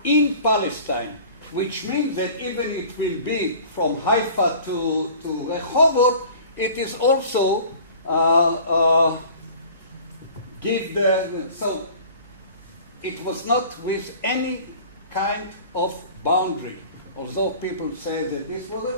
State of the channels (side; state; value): both; inverted; correlation -0.45